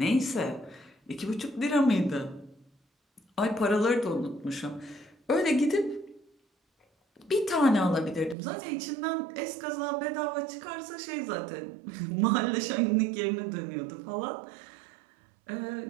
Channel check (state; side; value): drops out; left; at 8.3 s